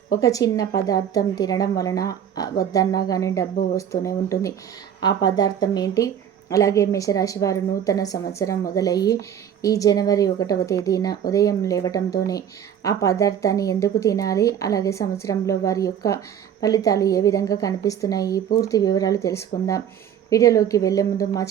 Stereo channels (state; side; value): quieter; left; 9.2 dB